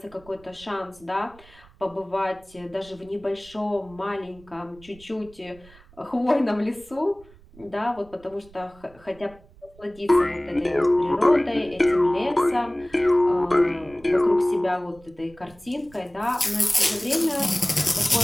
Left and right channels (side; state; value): right; noise; rumble, 25 dB below the sound